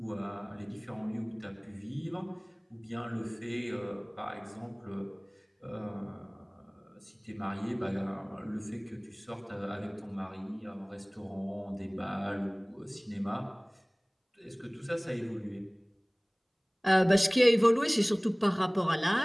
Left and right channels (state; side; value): identical; both; correlation 1.00